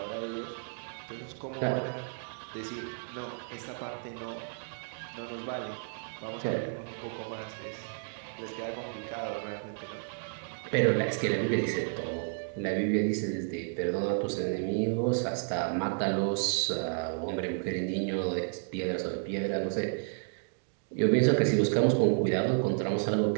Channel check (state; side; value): silent; left; digital silence